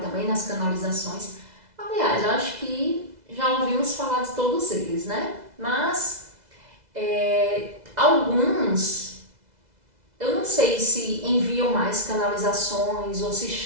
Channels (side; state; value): left; late; 2.0 ms